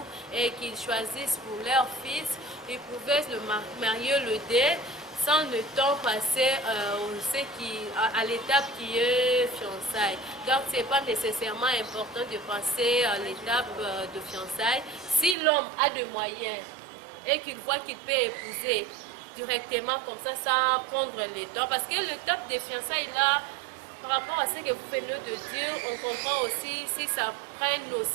et qu'ils choisissent pour leur fils. Ils pouvaient le marier le dé sans le temps passé à l'étape qui est fiançailles. Donc, ce n'est pas nécessairement important de passer à l'étape de fiançailles. Si l'homme a des moyens et qu'il voit qu'il peut épouser directement comme ça, sans prendre le temps, parce que l'étape des fiançailles là, par rapport à ce que vous venez de dire, on comprend aussi si ça prenne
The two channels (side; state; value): left; drops out; at 15.4 s